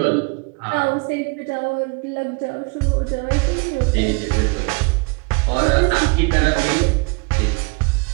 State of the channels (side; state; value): left; quieter; 30.7 dB